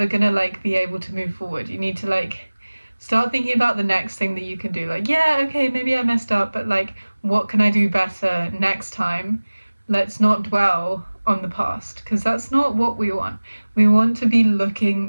gonna like be able to move forward. You need to like start thinking about the next thing that you can do. Like, yeah, okay, maybe I messed up, but like, what can I do better next time? Let's not dwell on the past, because that's not what we want. We want to be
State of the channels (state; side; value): inverted; both; correlation -1.00